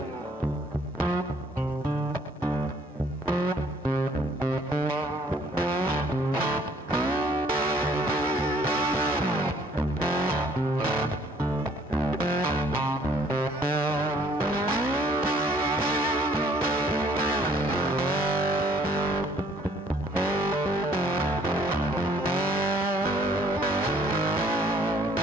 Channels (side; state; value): both; normal; correlation 0.61